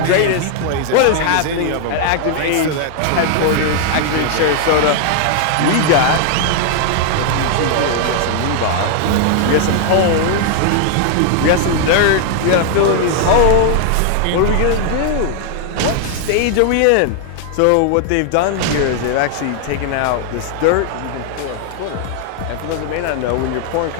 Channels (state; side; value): different; both; correlation 0.00